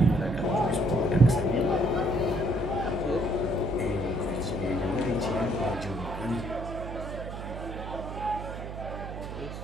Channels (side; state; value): right; noise; hum, 8 dB below the sound